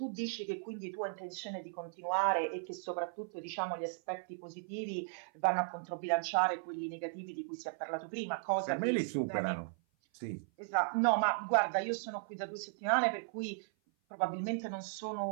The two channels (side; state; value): left; silent; 53 dB below the other